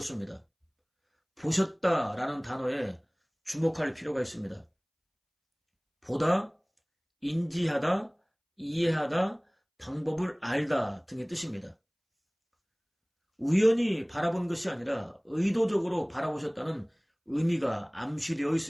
보셨다라는 단어에 주목할 필요가 있습니다. 보다, 인지하다, 이해하다, 방법을 알다 등의 뜻입니다. 우연히 바라본 것이 아니라 의도적으로 바라보셨다는 의미가 암시되어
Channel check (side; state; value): both; identical; correlation 1.00